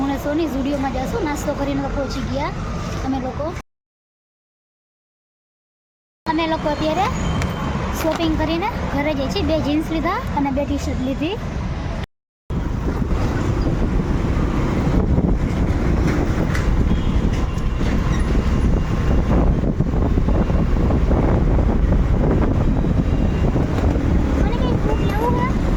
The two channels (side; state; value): both; identical; correlation 1.00